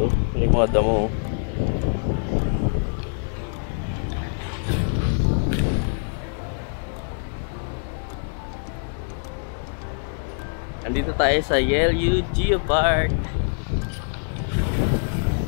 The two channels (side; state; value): right; silent; digital silence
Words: Yung mga damo. Andito tayo sa Yelyu Geopark.